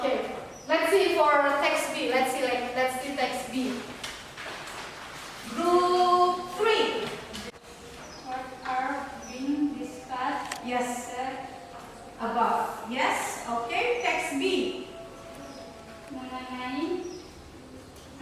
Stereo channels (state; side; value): identical; both; correlation 1.00